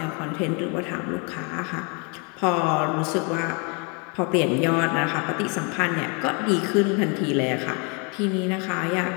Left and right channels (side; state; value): right; quieter; 34.0 dB